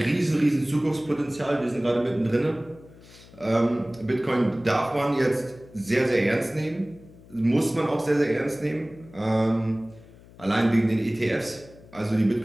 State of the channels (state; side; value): noise; left; hum, 22 dB below the sound